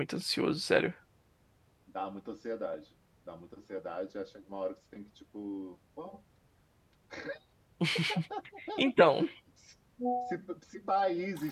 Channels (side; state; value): both; identical; correlation 1.00